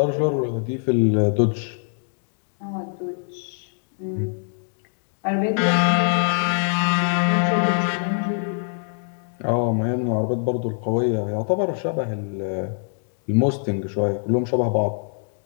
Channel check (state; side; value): silent; right; 63 dB below the other